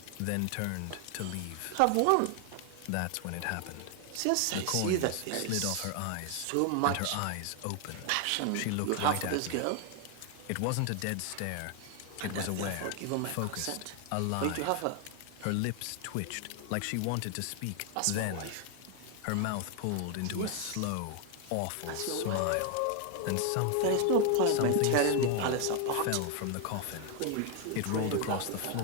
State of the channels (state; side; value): different; both; correlation 0.01